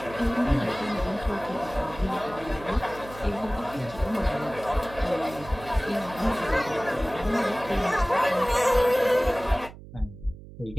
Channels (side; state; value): right; noise; hum, 16 dB below the sound